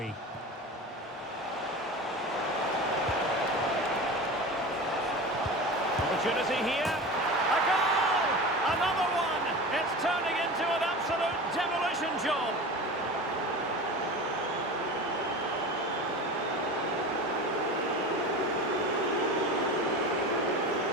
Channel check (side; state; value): both; normal; correlation 0.31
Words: Opportunity here. A goal! Another one! It's turning into an absolute demolition job.